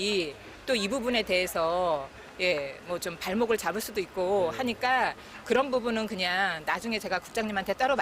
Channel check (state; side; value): identical; both; correlation 1.00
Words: 또 이 부분에 대해서 뭐 좀 발목을 잡을 수도 있고 하니까 그런 부분은 그냥 나중에 제가 국장님한테 따로